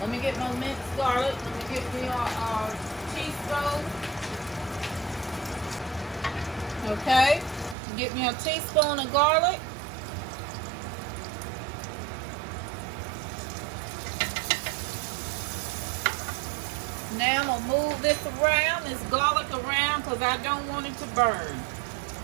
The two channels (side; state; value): left; drops out; at 7.8 s